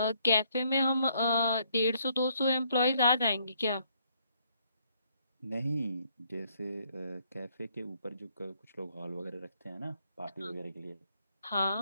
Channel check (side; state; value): both; inverted; correlation -0.69